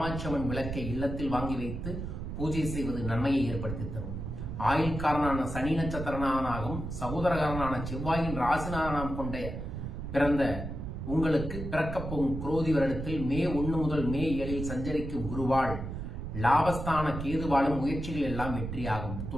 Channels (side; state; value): right; noise; rumble, 6 dB below the sound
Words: அம்மன் விளக்கை இல்லத்தில் வாங்கி வைத்து பூஜை செய்வது நன்மையை ஏற்படுத்தி தரும். ஆயுள்காரனான சனி நட்சத்திரனாகவும் சகோதரகாரனான செவ்வாயின் ராசிநாதனம் கொண்ட பிறந்த உங்களுக்கு பிறக்கப் போகும் குரோதி வருடத்தில் மே 1 முதல் மே 7 சஞ்சரிக்கும் குருவால் லாபஸ்தான கேதுவாலும் முயற்சிகள் எல்லாம் வெற்றியாகும்.